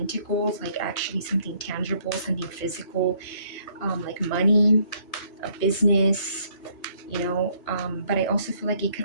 like actually something tangible, something physical, like money, a business, you know, but I also feel like it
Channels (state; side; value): late; right; 2.5 ms